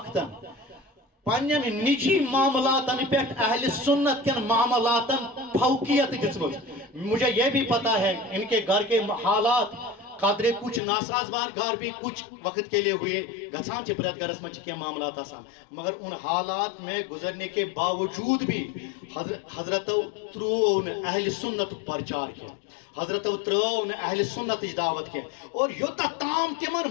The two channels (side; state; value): right; drops out; at 10.8 s